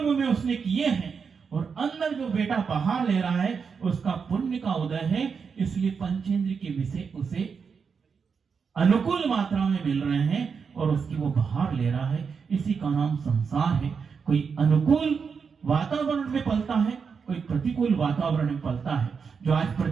में उसने किए हैं, और अंदर जो बेटा बाहर ले रहा है उसका पुण्य का उदय है। इसलिए पंचेंद्र के विषय उसे अनुकूल मात्रा में मिल रहे हैं और उसकी वो बाहर ले रहा है। इसी का नाम संसार है। कोई अनुकूल वातावरण में पलता है, कोई प्रतिकूल वातावरण में पलता है। जो आज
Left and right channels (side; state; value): left; quieter; 5.9 dB